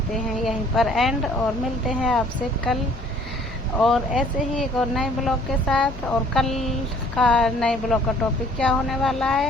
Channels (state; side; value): normal; both; correlation 0.57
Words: हैं यहीं पर एंड, और मिलते हैं आपसे कल और ऐसे ही एक और नए ब्लॉग के साथ। और कल का नए ब्लॉग का टॉपिक क्या होने वाला